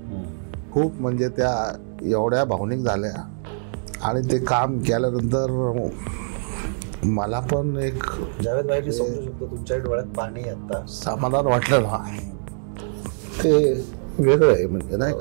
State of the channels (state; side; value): silent; left; 63 dB below the other